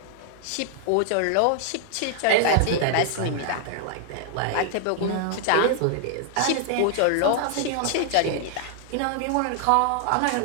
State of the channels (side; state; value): both; different; correlation -0.01